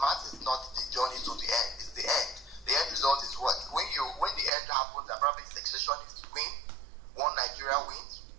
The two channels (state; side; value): drops out; left; at 4.5 s